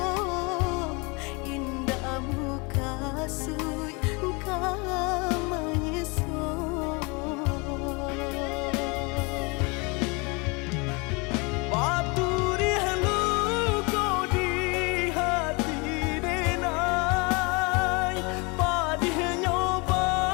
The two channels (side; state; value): right; quieter; 29.2 dB